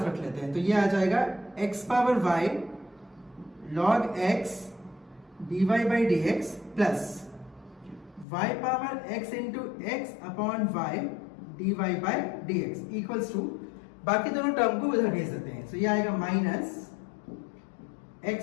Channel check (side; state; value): right; drops out; at 8.2 s